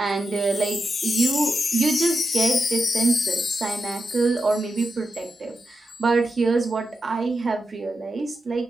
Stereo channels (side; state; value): both; normal; correlation 0.87